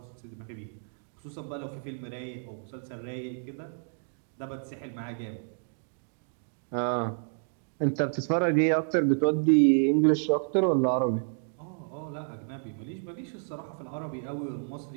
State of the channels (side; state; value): left; silent; digital silence